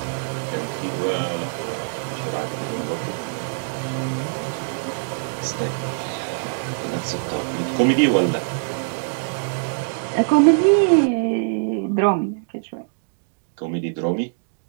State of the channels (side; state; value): left; silent; digital silence